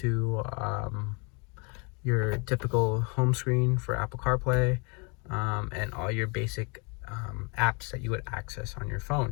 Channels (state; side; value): quieter; right; 33.1 dB